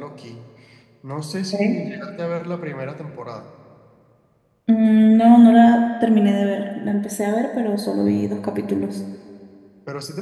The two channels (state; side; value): identical; both; correlation 1.00